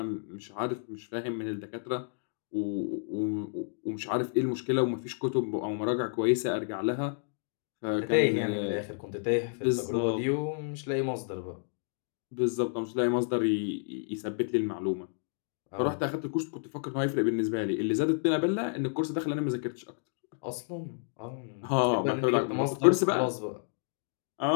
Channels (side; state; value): right; silent; digital silence